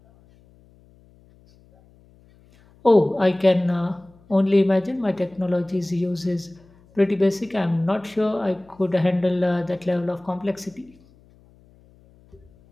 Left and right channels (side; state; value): left; noise; hum, 29 dB below the sound